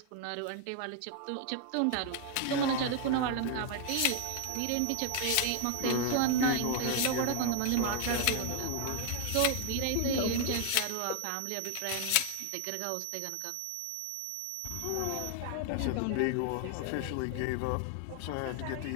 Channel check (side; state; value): both; different; correlation 0.00